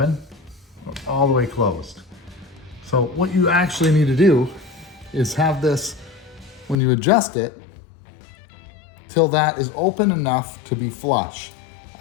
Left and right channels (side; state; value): right; drops out; at 6.8 s